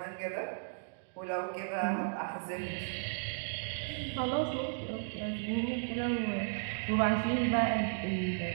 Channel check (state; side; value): silent; left; digital silence